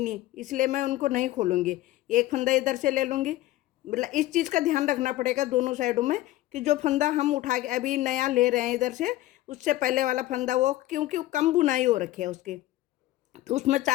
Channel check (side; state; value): right; quieter; 16.0 dB